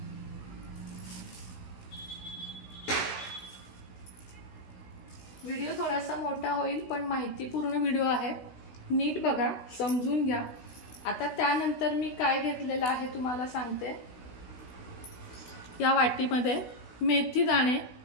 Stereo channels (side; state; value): right; late; 16 ms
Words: व्हिडिओ थोडासा मोठा होईल पण माहितीपूर्ण व्हिडिओ आहे, नीट बघा, समजून घ्या। आता त्यानंतर मी काय घेतलेलं आहे तुम्हाला सांगते। या वाटीमध्ये मेथी दाणे,